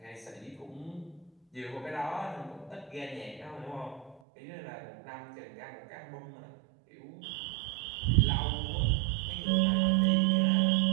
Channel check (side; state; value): left; drops out; at 4.2 s